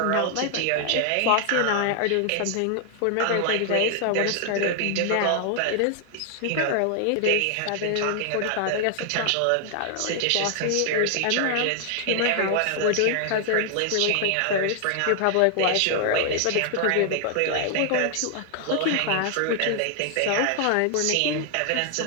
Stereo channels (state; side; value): different; both; correlation 0.00